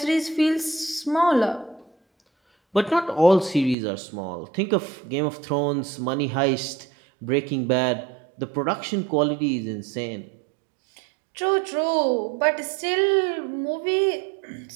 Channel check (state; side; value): drops out; left; at 3.8 s